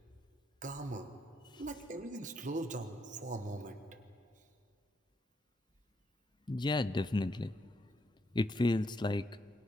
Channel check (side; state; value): both; normal; correlation 0.77